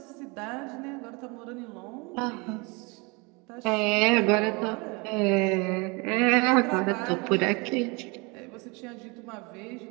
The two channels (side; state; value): left; quieter; 28.4 dB